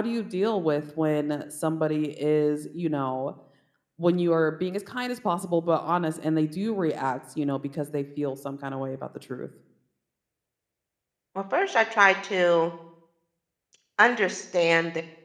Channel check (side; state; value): both; identical; correlation 1.00